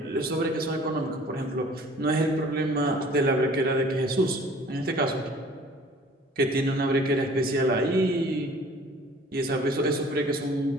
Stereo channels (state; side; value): normal; both; correlation 0.51